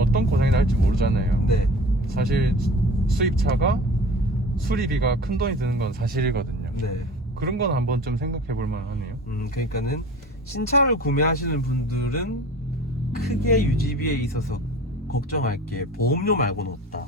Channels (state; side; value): normal; both; correlation 0.40